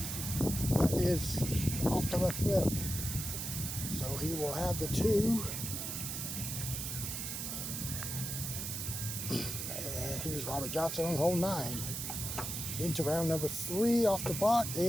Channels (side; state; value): right; noise; hiss, 4 dB below the sound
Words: off the left lip. So he will have the 2. And here's Robert Johnson on hole 9. Into round number 3 off the block.